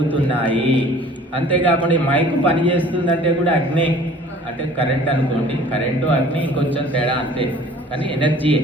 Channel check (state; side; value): normal; both; correlation 0.50